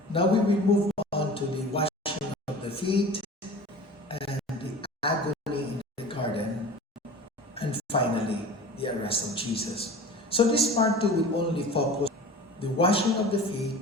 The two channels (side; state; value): both; normal; correlation 0.39